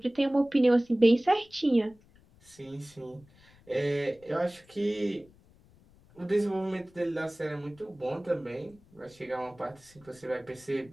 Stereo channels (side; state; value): left; noise; rumble, 28 dB below the sound